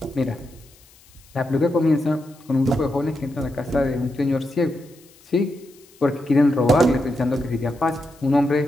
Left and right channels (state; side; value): noise; left; hiss, 27 dB below the sound